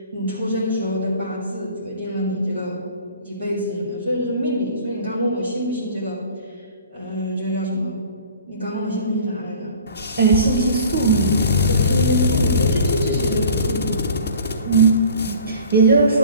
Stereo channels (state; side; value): inverted; both; correlation -0.46